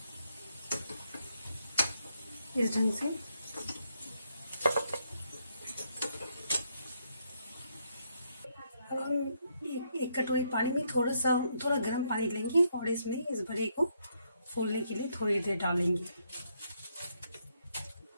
इस ढंग से अब हम एक कटोरी पानी में थोड़ा गर्म पानी लेंगे और इसमें इस बड़े को फूलने के लिए थोड़ी देर डालेंगे।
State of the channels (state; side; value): inverted; both; correlation -0.75